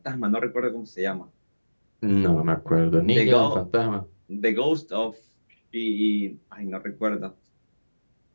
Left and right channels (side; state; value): both; inverted; correlation -1.00